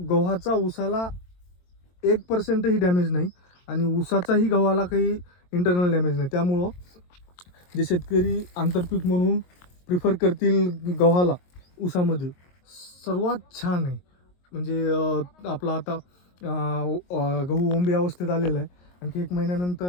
ऊसाला 1% डॅमेज नाही आणि ऊसाचाही गव्हाला काही इंटरनल डॅमेज नाही. त्यामुळं जे शेतकरी आंतरपीक म्हणून प्रिफर करतील गव्हाला ऊसामध्ये सर्वात छान आहे. म्हणजे आपला आता गहू ओंबी अवस्थेत आलेला आहे. आणखी 1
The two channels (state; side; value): late; right; 22 ms